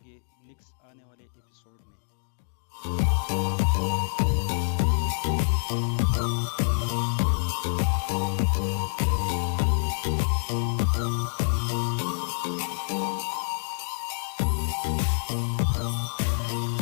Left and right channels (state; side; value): silent; right; digital silence